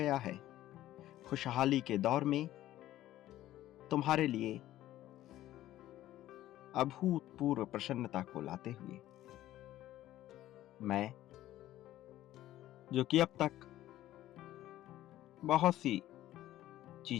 है खुशहाली के दौर में तुम्हारे लिए अभूतपूर्व प्रसन्नता को लाते हुए। मैं, जो कि अब तक बहुत सी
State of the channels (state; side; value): quieter; right; 14.1 dB